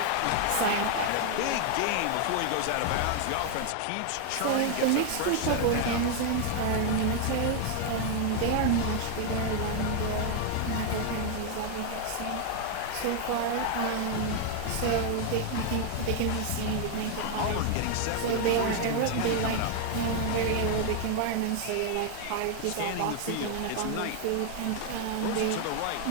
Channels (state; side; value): different; both; correlation 0.00